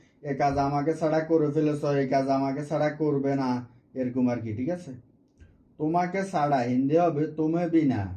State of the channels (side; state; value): both; identical; correlation 1.00